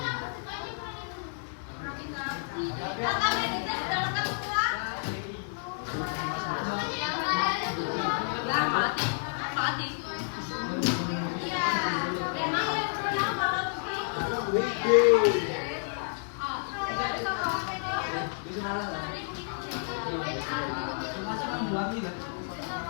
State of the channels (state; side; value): silent; right; digital silence